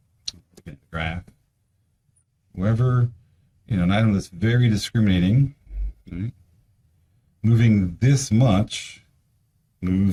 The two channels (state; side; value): identical; both; correlation 1.00